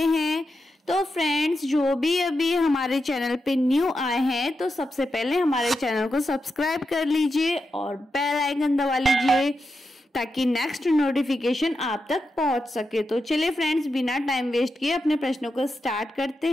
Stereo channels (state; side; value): normal; both; correlation 0.88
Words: हैं। तो फ्रेंड्स, जो भी अभी हमारे चैनल पे न्यू आए हैं तो सबसे पहले हमारे चैनल को सब्सक्राइब कर लीजिए और बेल आइकन दबा लीजिए ताकि नेक्स्ट नोटिफिकेशन आप तक पहुंच सके। तो चलिए फ्रेंड्स, बिना टाइम वेस्ट किए अपने प्रश्नों को स्टार्ट करते